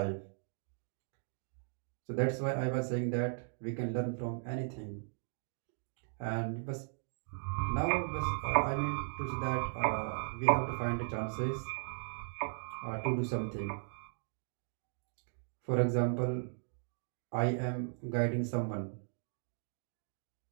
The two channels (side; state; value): left; silent; digital silence